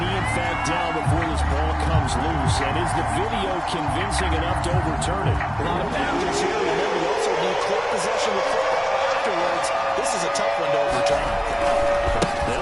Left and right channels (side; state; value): both; identical; correlation 1.00